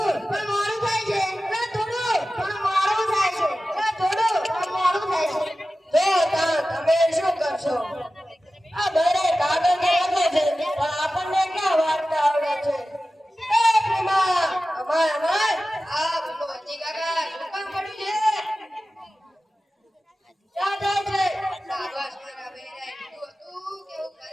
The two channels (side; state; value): both; normal; correlation 0.95